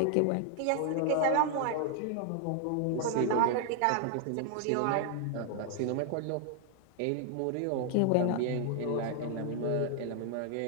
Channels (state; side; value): different; both; correlation 0.00